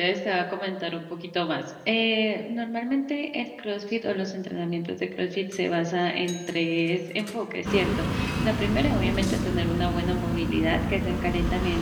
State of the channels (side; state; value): both; identical; correlation 1.00